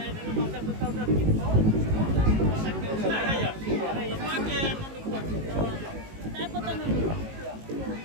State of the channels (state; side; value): late; left; 19 ms